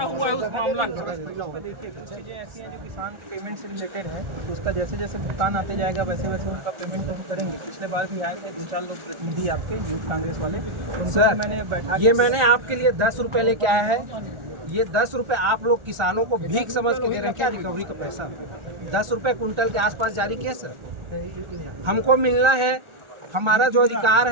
है उस मामला का? देखिए कुछ चीज़ें ऐसी हैं जो किसान पेमेंट से रिलेटेड है, तो उसका जैसे जैसे भुगतान आते जाएगा वैसे वैसे उनका पेमेंट तो हम करेंगे। पिछले बार भी आए थे 2-4 लोग प्रतिनिधि आपके यूथ कांग्रेस वाले, उनसे मैंने बैठा ये मैंने आपके लिए 10 रुपए लेके आया है। ये 10 रुपए आप लोग किसानों को भीख समझ के दे रहे हैं क्या? रिकवरी का पैसा 10 रुपए कुंटल के आसपास जारी किया सर। हमको मिलना है, हमारा जो अधिकार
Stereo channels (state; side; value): late; left; 1.4 ms